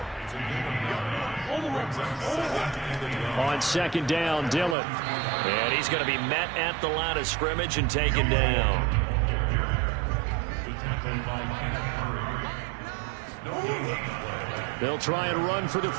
On second down, Dillon. And he's going to be met at the line of scrimmage and taken down. They'll try and run for the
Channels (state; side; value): drops out; left; at 4.8 s